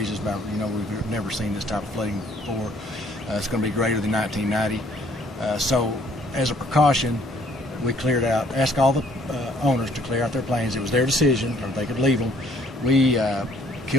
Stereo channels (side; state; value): both; normal; correlation 0.61